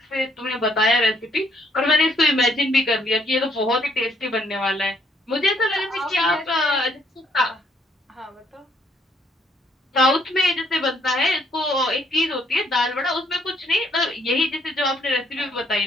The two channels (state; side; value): normal; both; correlation 0.68